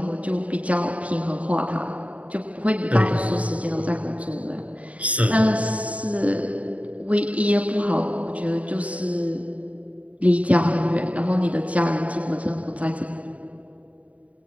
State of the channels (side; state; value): left; late; 0.067 ms